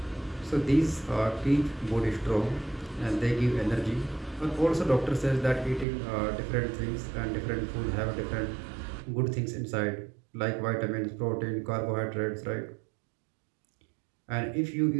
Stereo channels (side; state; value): left; drops out; at 5.9 s